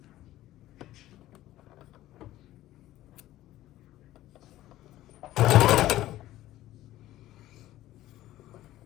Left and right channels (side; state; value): right; quieter; 14.9 dB